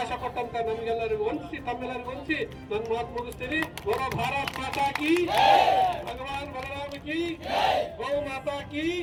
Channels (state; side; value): identical; both; correlation 1.00